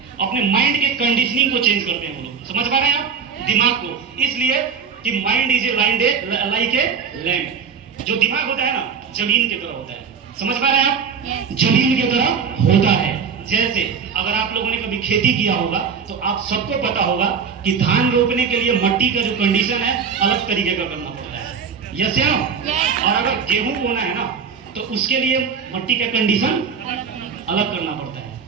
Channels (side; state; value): left; quieter; 6.3 dB